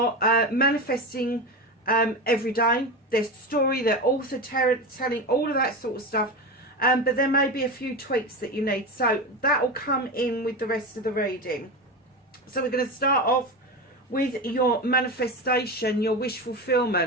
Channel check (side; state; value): both; normal; correlation 0.22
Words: manifesting every day. Their story, their author telling, all of that sort of stuff. But there may be a few tweaks that you need. So that will come in with the rest of the reading. So we're going to start off with your manifestation, your wish